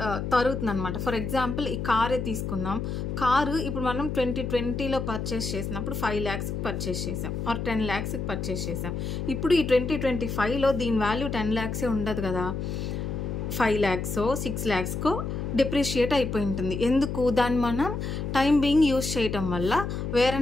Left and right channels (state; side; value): noise; left; hum, 3 dB below the sound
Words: తరుగుతుంది అనమాట. ఫర్ ఎగ్జాంపుల్ ఈ కారే తీసుకుందాం. కారు ఇప్పుడు మనం 2020లో పర్చేస్ చేసినప్పుడు 5 lakhsకి పర్చేస్ చేసాం, ఆర్ 10 lakhsకి పర్చేస్ చేసాం. ఇప్పుడు ఈ 2025లో దీని వాల్యూ 10 lakhs ఉండదు కదా, 5 lakhs 6 lakhs డిప్రిషియేట్ అయిపోయి ఉంటుంది. ఎందుకు, దాన్ని మనం టైం బీయింగ్ యూజ్ చేయటం వల్ల వేర్